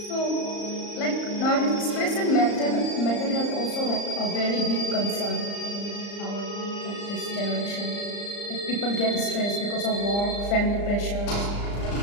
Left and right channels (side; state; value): right; late; 35 ms